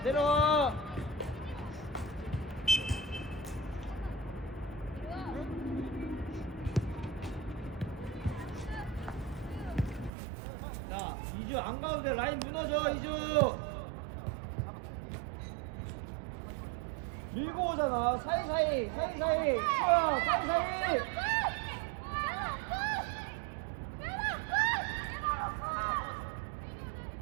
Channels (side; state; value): left; drops out; at 10.1 s